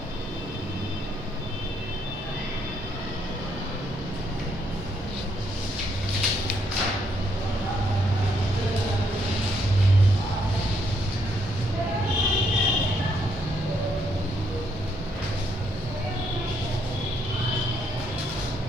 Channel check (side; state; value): both; normal; correlation 0.73